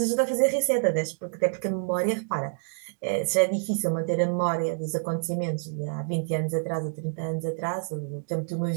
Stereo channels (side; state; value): left; silent; digital silence